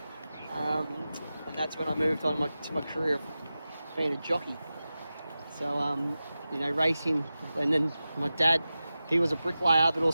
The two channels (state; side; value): inverted; both; correlation -0.94